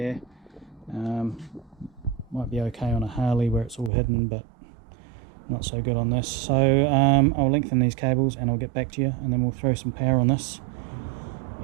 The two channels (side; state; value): left; drops out; at 3.9 s